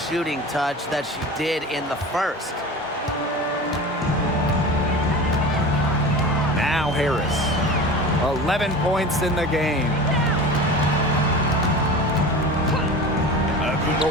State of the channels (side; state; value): both; normal; correlation 0.34